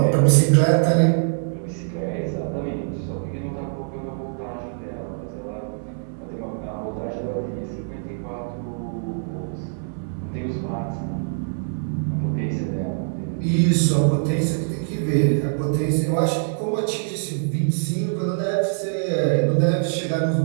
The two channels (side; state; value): left; silent; 63 dB below the other